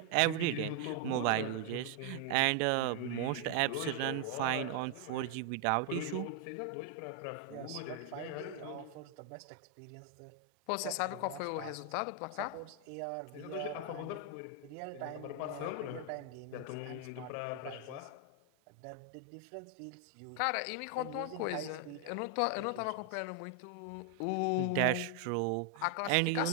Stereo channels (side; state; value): both; different; correlation 0.00